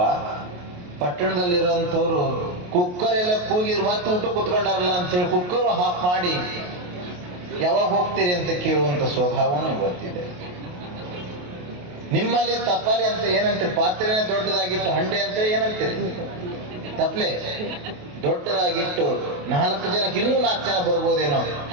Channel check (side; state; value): left; late; 28 ms